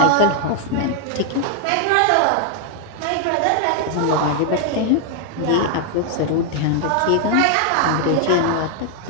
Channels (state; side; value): different; both; correlation 0.00